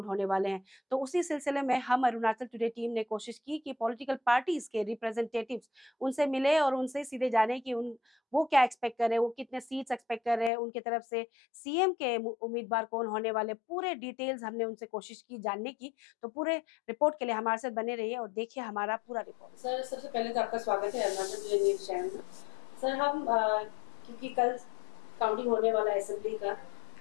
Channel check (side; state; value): right; drops out; at 10.5 s